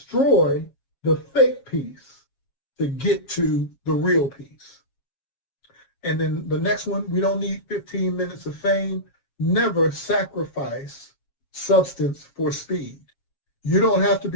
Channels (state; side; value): late; right; 7.3 ms